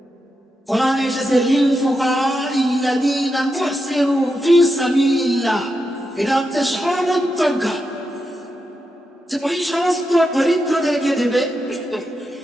কোরআনে এসেছে লিল ফুকারাইল্লাযীনা মুহসিরু ফি সাবিলিল্লাহ, এটা হচ্ছে সর্বোত্তমকার, যে ওই সমস্ত দরিদ্রদেরকে দেবে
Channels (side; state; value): both; normal; correlation 0.86